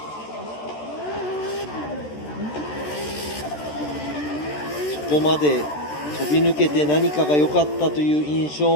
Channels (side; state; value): right; late; 13 ms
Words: そこまで飛び抜けて何かが良かったという印